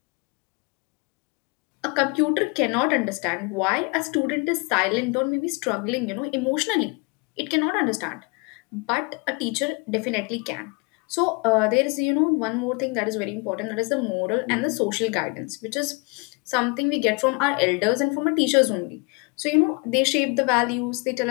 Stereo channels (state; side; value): quieter; right; 31.1 dB